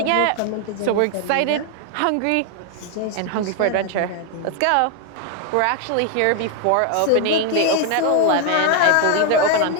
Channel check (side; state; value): both; different; correlation 0.00